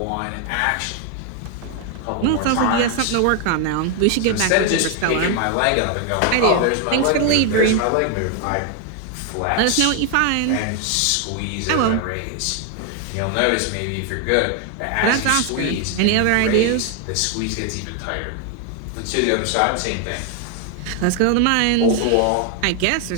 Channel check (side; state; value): both; different; correlation 0.01